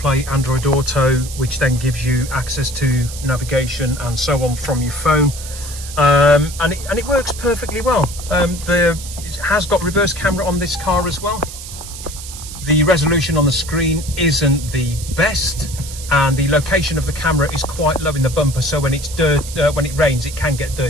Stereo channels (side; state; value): right; noise; hiss, 12 dB below the sound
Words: Android Auto, which then gives you access to navigation and so on from your phone. And it works perfectly well. It has got reverse camera on this car as well. The resolution on the screen isn't the best, and the location of the camera is quite low in the bumper, so when when it rains it can get